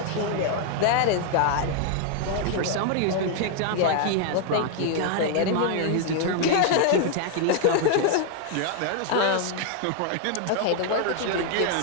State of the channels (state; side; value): different; both; correlation 0.00